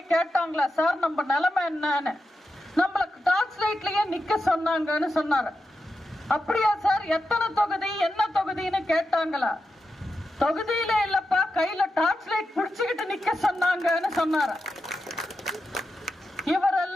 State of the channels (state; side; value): normal; both; correlation 0.89